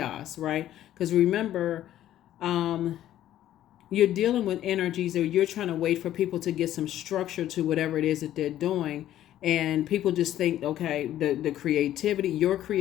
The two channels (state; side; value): quieter; right; 12.5 dB